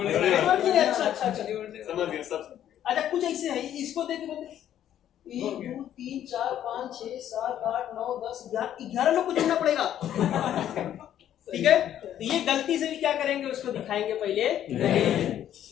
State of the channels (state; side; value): quieter; right; 10.9 dB